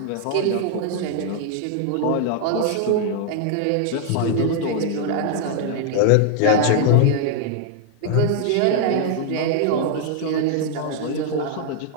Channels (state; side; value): different; both; correlation 0.00